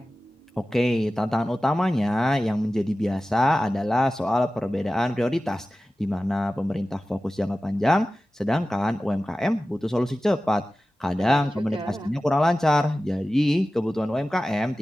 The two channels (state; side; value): normal; both; correlation 0.96